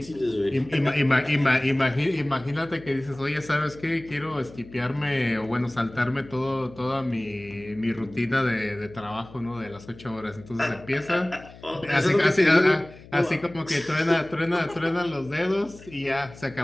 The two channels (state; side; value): noise; left; hum, 20 dB below the sound